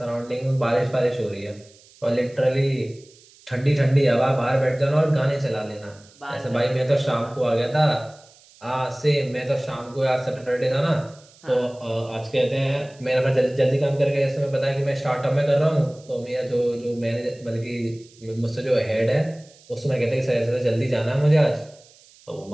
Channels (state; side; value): noise; right; hiss, 27 dB below the sound